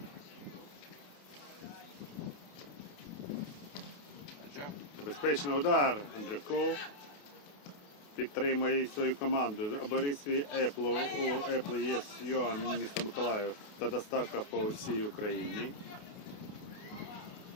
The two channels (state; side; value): late; right; 28 ms